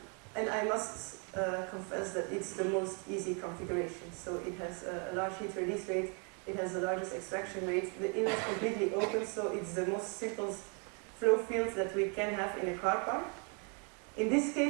I must confess that it's the most easy configuration. So it has a large heat release rate, it has the largest extraction rate, the inlet is completely open, so it's the most simplest flow field that we can have in a car park. In this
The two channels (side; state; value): left; quieter; 36.8 dB